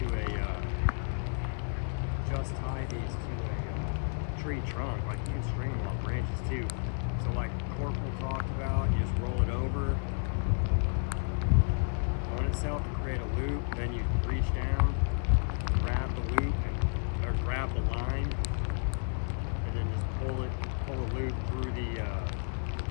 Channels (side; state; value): right; silent; 57 dB below the other